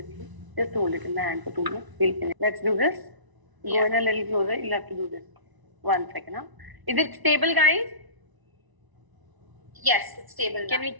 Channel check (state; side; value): late; left; 1.0 ms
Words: Just hold it in the hand for 2 minutes. We'll finish. Let's do this. Go in a little closer. You'll have to do this. 1 second. Huh? Is it stable, guys? Yes, it's stable. Can we